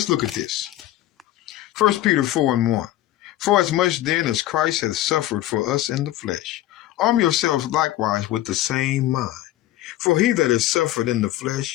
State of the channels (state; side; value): quieter; right; 14.6 dB